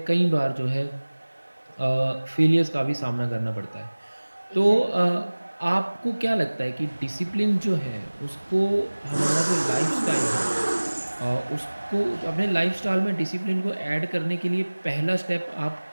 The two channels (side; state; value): both; inverted; correlation -1.00